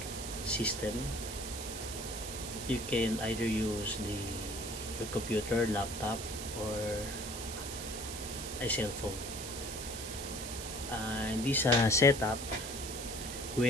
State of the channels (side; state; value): right; noise; hiss, 7 dB below the sound